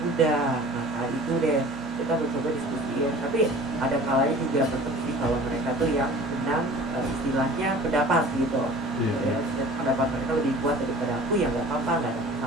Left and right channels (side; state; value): right; noise; hum, 21 dB below the sound